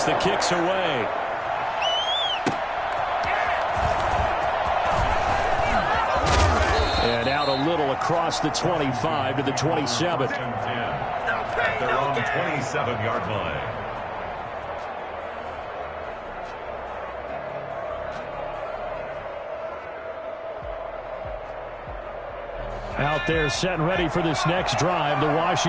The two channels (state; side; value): identical; both; correlation 1.00